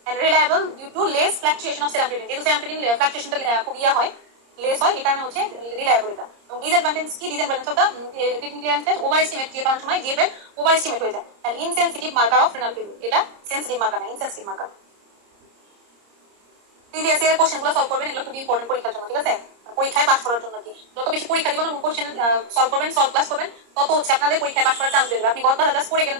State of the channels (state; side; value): late; left; 30 ms